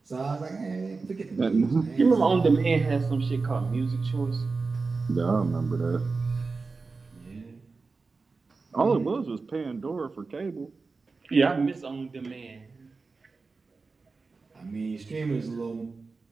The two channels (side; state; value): left; quieter; 4.2 dB